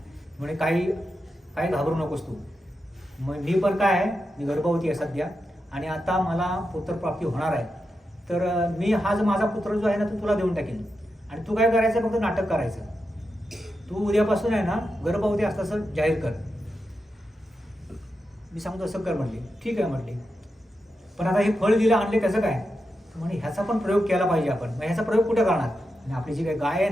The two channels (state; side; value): normal; both; correlation 0.88